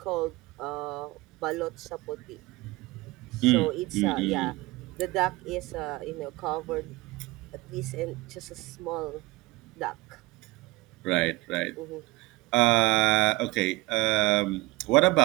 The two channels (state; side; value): quieter; left; 20.6 dB